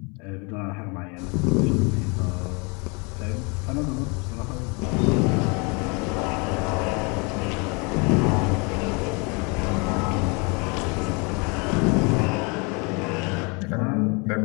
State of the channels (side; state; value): right; quieter; 31.2 dB